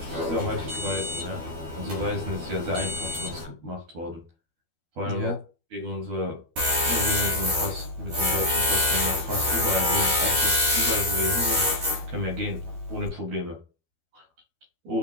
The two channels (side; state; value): left; late; 12 ms